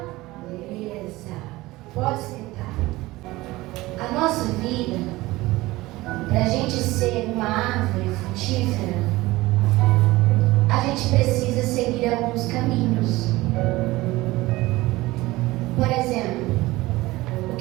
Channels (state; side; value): quieter; left; 19.3 dB